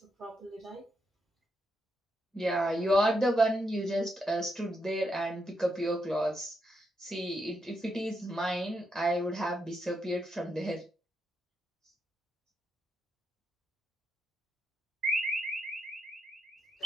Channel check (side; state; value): both; normal; correlation 0.81